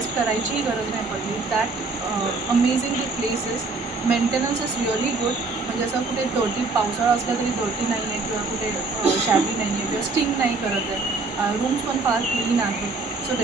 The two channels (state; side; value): quieter; left; 3.8 dB